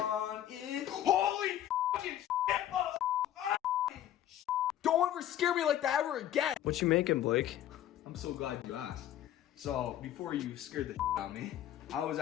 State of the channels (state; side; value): quieter; right; 11.8 dB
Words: it. Holy fucking shit! Don't ever scare me like that ever again! What you making, Blake? I'm so glad you asked. So, before you scared the shit out of me, I was